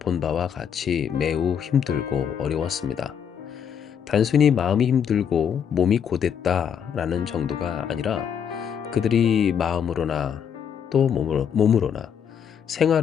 바와 같이 매우 힘들고 어려웠습니다. 단순히 마음이 힘들고 몸이 고됐다라는 정도가 아니라 그들이 마음으로나 또 몸으로나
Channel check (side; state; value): right; quieter; 8.0 dB